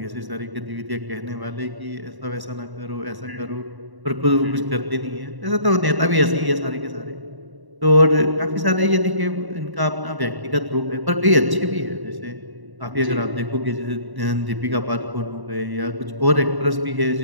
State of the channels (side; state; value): left; late; 1.1 ms